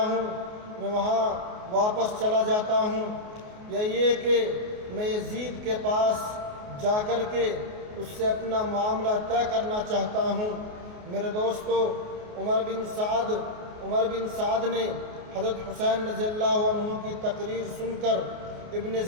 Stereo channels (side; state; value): left; late; 28 ms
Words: میں وہاں واپس چلا جاتا ہوں، یا یہ کہ میں یزید کے پاس جا کر کے اس سے اپنا معاملہ طے کرنا چاہتا ہوں۔ میرے دوستو، عمر بن سعد نے حضرت حسین رضی اللہ عنہ کی تقریر سن کر ابن